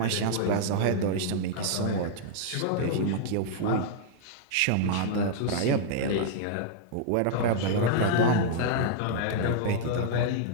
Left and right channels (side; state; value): both; different; correlation -0.01